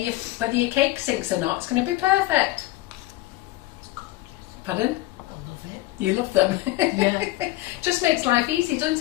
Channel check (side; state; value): right; quieter; 17.6 dB